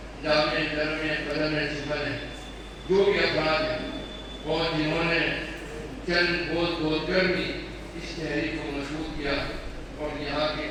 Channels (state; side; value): identical; both; correlation 1.00